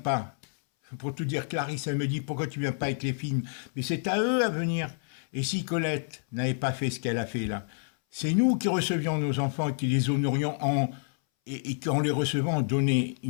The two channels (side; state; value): right; silent; 59 dB below the other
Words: pas. Pour tout dire, Clarisse, elle me dit, pourquoi tu viens pas avec les films? Mais c'est à eux à venir. Et si Colette n'avait pas fait ce qu'elle a fait là, c'est nous qui recevions nos enfants, qui les honorions et qu'en les recevant, on donnait